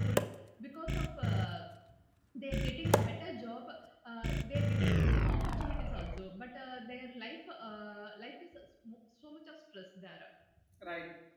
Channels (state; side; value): identical; both; correlation 1.00